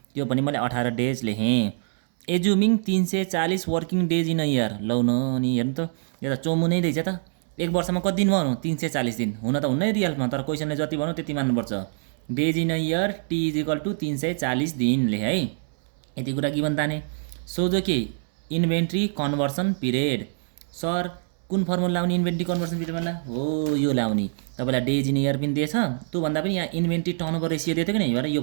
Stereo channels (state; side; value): silent; left; 62 dB below the other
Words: त्यो पनि मैले 18 डेज लेखेँ। Assuming 340 working days in a year, लौ न अनि हेर्नु त यो त चोमु नै रहेछ त, 1 वर्षमा कति दिन भन्नु 340 दिन, हुन त हुन्न रियलमा, तर क्वेसनले जति भन्नु त्यति मान्नुपर्छ। Days in a year T is equal to 340 दिन लेखेँ है। यति कुरा गिभन ताने। सोझो के इन्भेन्ट्री कन्भर्सन पिरियड, सर कुन फर्मुला लाउने इन्भेन्ट्री कन्भर्सन पिरियडमा हो यो लाउने, तपाईँलाई डेज इन इयर पनि दिएछ, त्योभन्दा पनि यहाँ इन्भेन्ट्री टर्नओभर रेसियो दिएको कि नै, यो